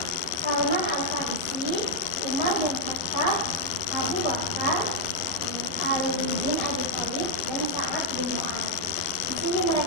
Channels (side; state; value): right; late; 11 ms